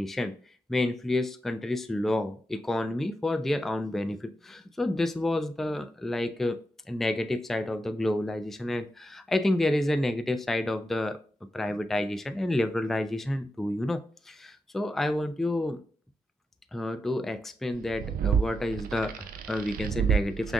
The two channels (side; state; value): both; normal; correlation 0.87